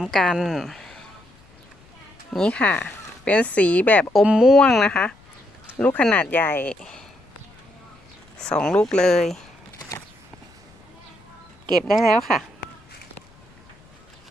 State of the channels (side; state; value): left; noise; rumble, 28 dB below the sound